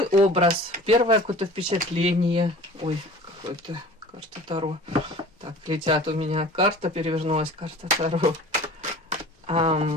образ, первое какое-то впечатление. Ой, какой-то карта Таро. Так, летят у меня. Карта перевернулась, карта Таро.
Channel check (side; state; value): both; normal; correlation 0.42